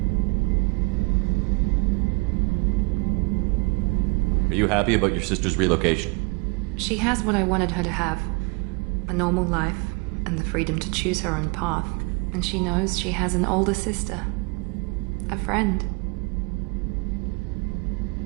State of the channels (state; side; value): quieter; left; 30.4 dB